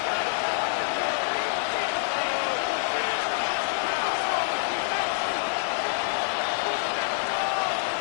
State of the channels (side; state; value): right; silent; digital silence